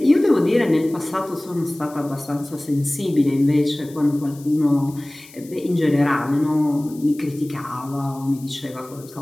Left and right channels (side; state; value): left; noise; hiss, 22 dB below the sound